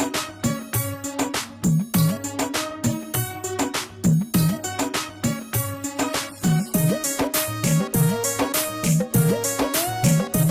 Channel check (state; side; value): identical; both; correlation 1.00